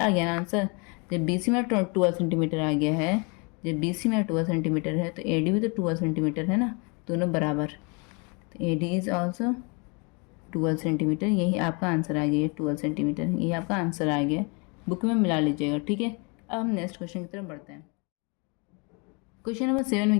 गया ना आंसर। जब बी सी में 12 सेंटीमीटर आ गया है, जब बी सी में 12 सेंटीमीटर है तो ए डी भी तो 12 सेंटीमीटर है ना, दोनों बराबर। तो ए डी इज ऑल्सो 12 सेंटीमीटर। यही आपका आंसर आ गया, 12 सेंटीमीटर यही आपका आंसर आ गया। बुक में मिला लीजिएगा। ठीक है, अब हम नेक्स्ट क्वेश्चन की तरफ बढ़ते हैं। क्वेश्चन नंबर 7 में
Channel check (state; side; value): quieter; right; 32.2 dB